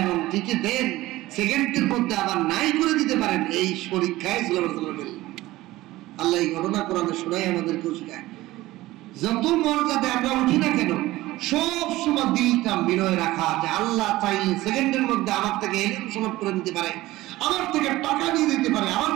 এবং টিকে দেন, সেকেন্ডের মধ্যে আবার নাই করে দিতে পারেন, এই পরীক্ষায় সুলাইমান আলাইহিস সালাম পেলেন। আল্লাহ এই ঘটনা কোরআনে শোনায় আমাদেরকেও শেখায়, যত মর্যাদা আমরা উঠি না কেন, সব সময় দিলটা বিনয় রাখা, যে আল্লাহ চাইলে সেকেন্ডের মধ্যে আমার থেকে এলিম সমাপ্ত করে দিতে পারে, আমার থেকে টাকা নিয়ে দিতে পারে, আমার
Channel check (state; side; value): quieter; left; 17.5 dB